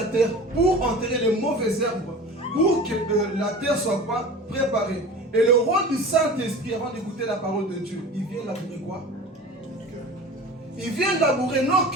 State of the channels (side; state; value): both; normal; correlation 0.37